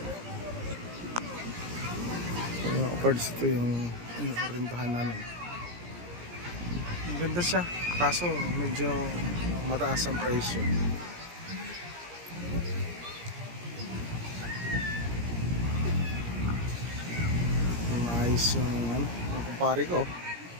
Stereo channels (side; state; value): left; late; 17 ms